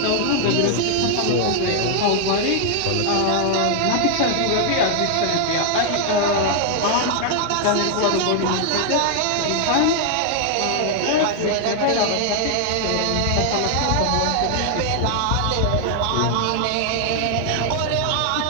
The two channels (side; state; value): both; different; correlation 0.00